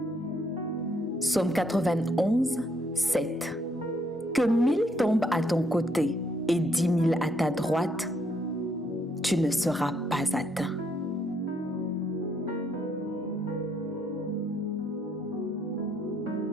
Psaume 91, 7. Que 1000 tombent à ton côté et 10 000 à ta droite, tu ne seras pas atteint.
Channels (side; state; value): both; normal; correlation 0.71